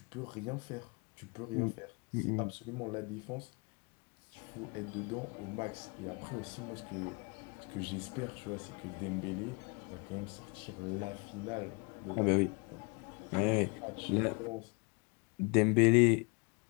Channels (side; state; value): right; quieter; 32.7 dB